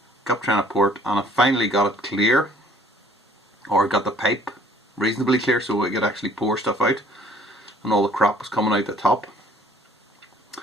Kept trying to pour it, and I finally got it clear, or got the pipe reasonably clear so I could actually pour stuff out, and all the crap was coming out the top.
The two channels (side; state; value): both; normal; correlation 0.57